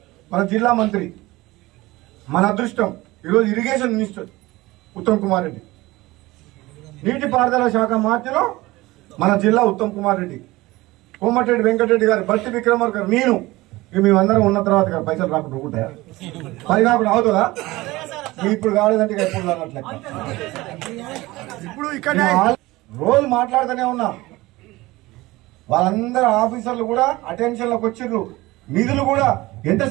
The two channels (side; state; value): left; quieter; 19.7 dB